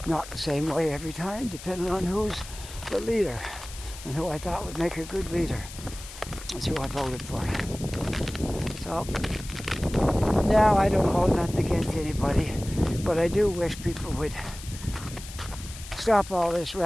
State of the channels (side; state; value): left; noise; hiss, 14 dB below the sound